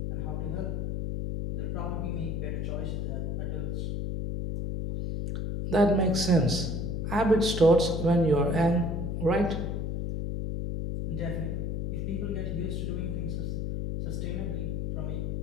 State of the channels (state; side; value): noise; left; hum, 1 dB below the sound